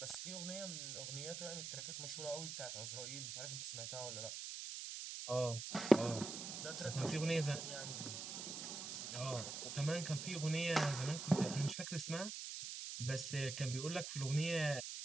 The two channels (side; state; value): right; noise; hiss, 6 dB below the sound